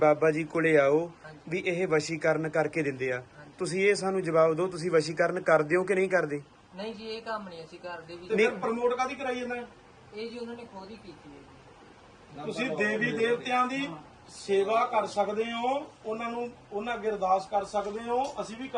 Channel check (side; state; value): both; identical; correlation 1.00